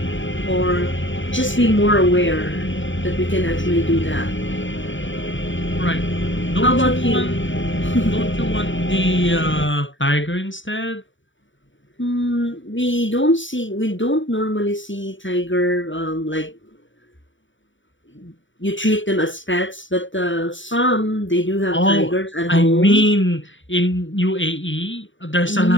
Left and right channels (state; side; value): late; right; 0.55 ms